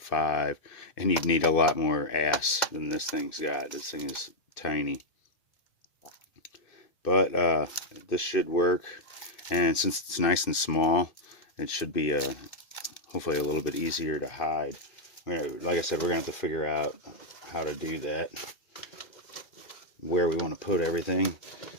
and you'd need a lot more ass than this thing's got. This thing is tiny. But this should work, and since it's nice and small, it should be hopefully a little bit easier to hide. Like I said, we're going to have to figure out how to do that, where we want to put everything.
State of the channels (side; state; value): right; late; 2.6 ms